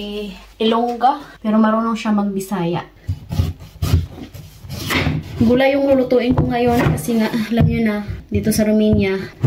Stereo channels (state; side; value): identical; both; correlation 1.00